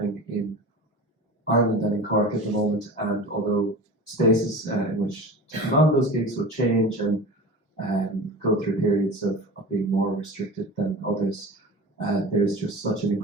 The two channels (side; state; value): both; normal; correlation 0.34